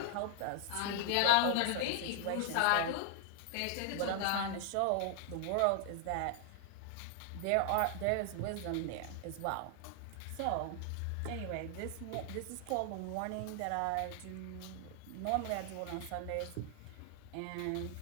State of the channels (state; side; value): different; both; correlation -0.01